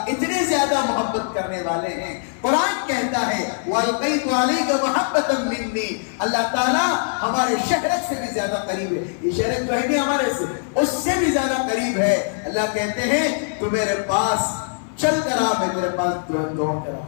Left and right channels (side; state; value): right; silent; 64 dB below the other